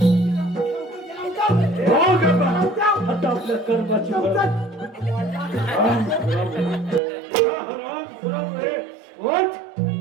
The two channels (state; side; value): drops out; left; at 7.0 s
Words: आता आपल्या कर्माची